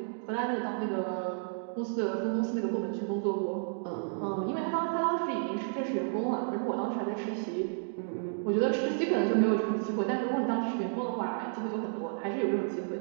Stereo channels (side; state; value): left; silent; digital silence